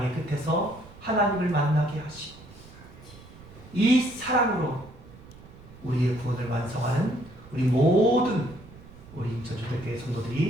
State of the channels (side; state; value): right; noise; rumble, 20 dB below the sound